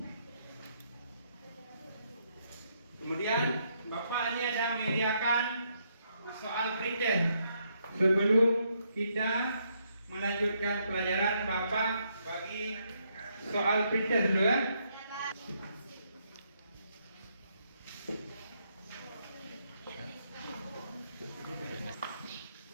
Kemudian Bapak ini ada menyediakan soal pretest. Sebelum kita melanjutkan pelajaran, Bapak bagi soal pretest dulu ya.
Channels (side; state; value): both; inverted; correlation -0.75